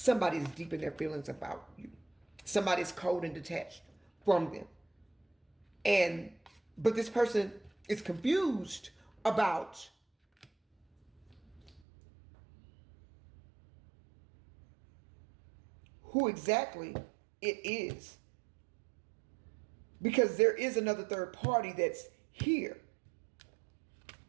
is deep in their feelings about you. Somebody's cold and detached from them. But this person is confused about who exactly it is. Because there is another third party that's here.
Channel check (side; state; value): left; drops out; at 11.8 s